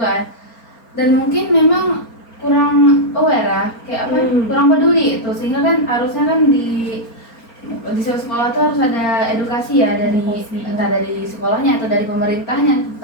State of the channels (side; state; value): right; late; 4.4 ms